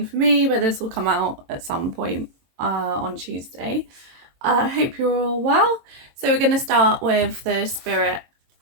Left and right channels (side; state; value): left; late; 22 ms